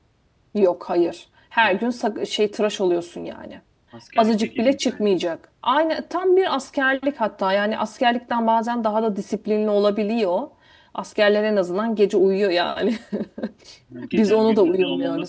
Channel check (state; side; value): identical; both; correlation 1.00